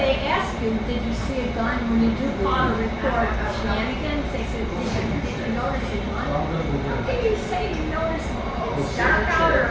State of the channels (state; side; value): identical; both; correlation 1.00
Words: ask you, did you see a gun? When you do call a report of shenanigans, they said, did you notice a gun? How can you say you noticed it's dark out